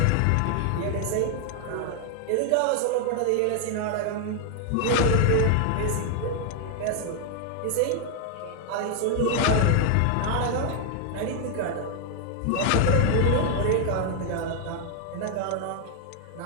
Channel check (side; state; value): both; different; correlation 0.00